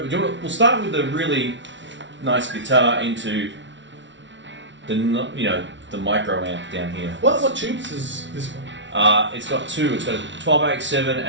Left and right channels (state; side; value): late; left; 0.54 ms